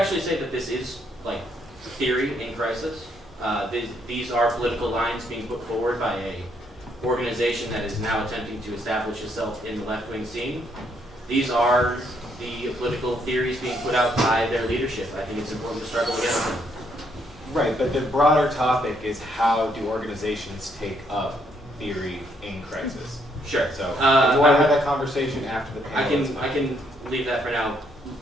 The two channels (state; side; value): normal; both; correlation 0.72